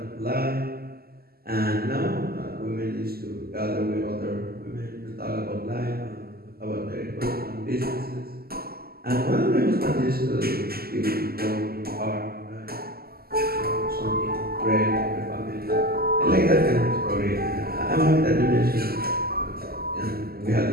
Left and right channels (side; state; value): left; late; 0.45 ms